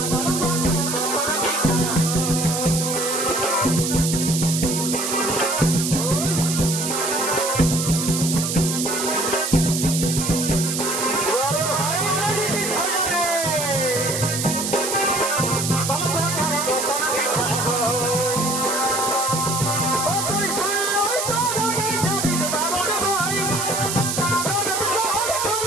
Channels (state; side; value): noise; right; hiss, 2 dB below the sound